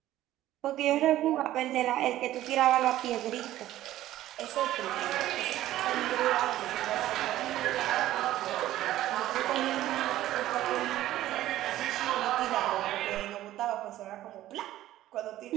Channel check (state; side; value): quieter; left; 14.2 dB